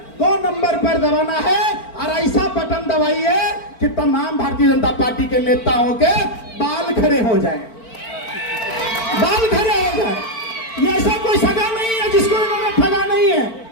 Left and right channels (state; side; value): late; right; 4.4 ms